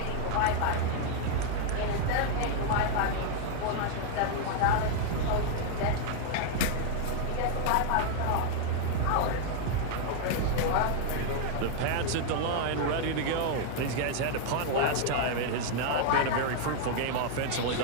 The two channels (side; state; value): both; different; correlation 0.00